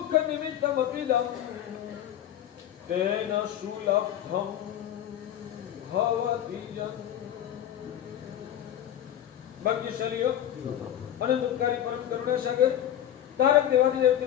निमित्तमपिदं तेन सुलभं भवति जन। भाग्यशाली हो अनंतकारी परम करुणा सागर तारक देवादिदेव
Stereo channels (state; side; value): quieter; right; 11.0 dB